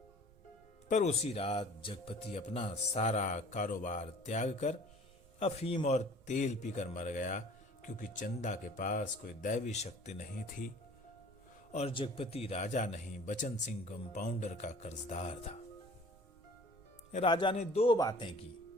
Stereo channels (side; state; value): right; noise; rumble, 25 dB below the sound